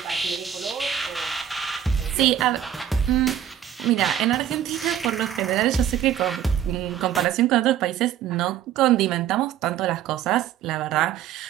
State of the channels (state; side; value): quieter; left; 10.2 dB